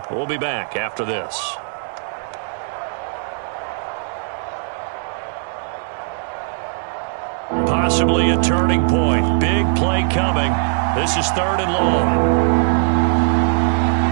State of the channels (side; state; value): left; silent; digital silence